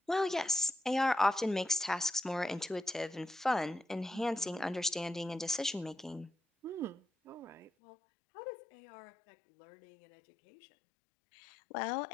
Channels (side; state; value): right; drops out; at 7.7 s